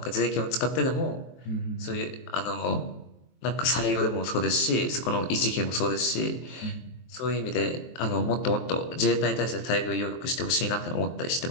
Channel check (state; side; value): late; right; 23 ms